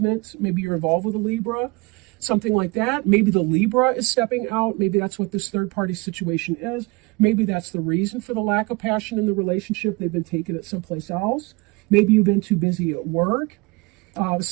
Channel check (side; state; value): left; quieter; 25.9 dB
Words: Maybe you're involved with a Libra, something like that. Maybe the Libra is stepping out. Maybe that's what this third-party situation is. Maybe that's the reason for the lack of passion in the relationship. They've been taking it someplace else. Maybe you've been too busy at work,